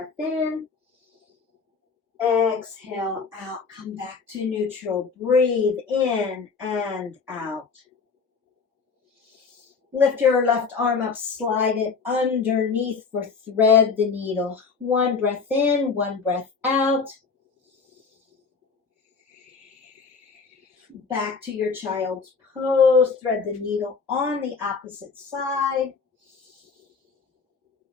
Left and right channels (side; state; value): right; quieter; 5.1 dB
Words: in. Exhale out. Come back to neutral. Breathe in and out. Lift your left arm up. Slide it underneath for thread the needle. One breath in. One breath out. Back to your child's pose. Thread the needle on the opposite side.